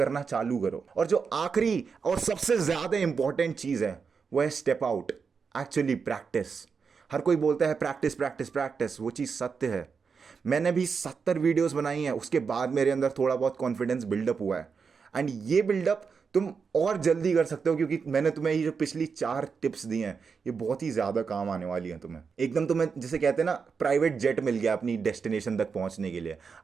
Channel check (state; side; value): quieter; left; 5.6 dB